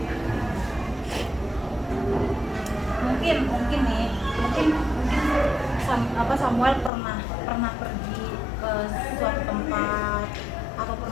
Mungkin nih, mungkin Samuel pernah pergi ke suatu tempat atau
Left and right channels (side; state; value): right; drops out; at 6.9 s